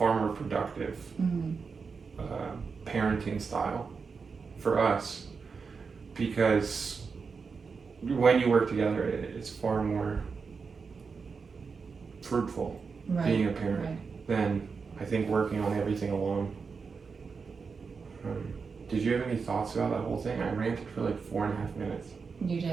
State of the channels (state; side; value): quieter; left; 5.2 dB